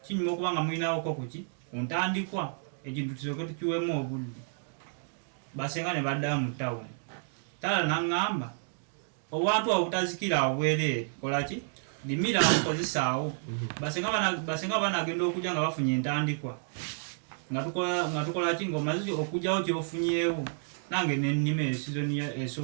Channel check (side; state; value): left; silent; digital silence